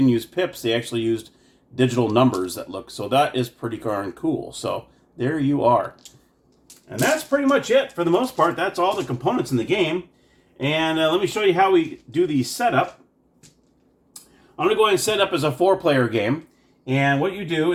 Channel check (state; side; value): identical; both; correlation 1.00